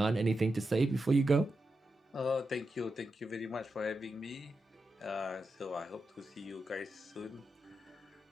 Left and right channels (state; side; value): normal; both; correlation 0.88